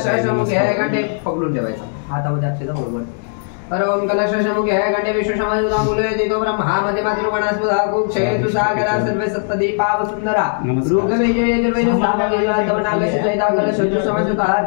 घंटे पकडून ठेवायचा हातामध्ये अक्षता बरोबर ओम कलशामुखे घंटे विश्वसमायुधा मुले देतो ब्रह्मा मध्ये मातृगणास्पदा कुक्षेतु सागरा सर्वे सप्तदीपाव सुंदरा ऋग्वेदे यजुर्वेदे सामवेदे तवनागस्य चैता कलशजु समासुता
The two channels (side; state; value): right; silent; digital silence